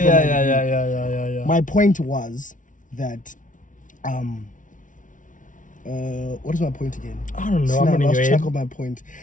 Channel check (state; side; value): late; right; 0.38 ms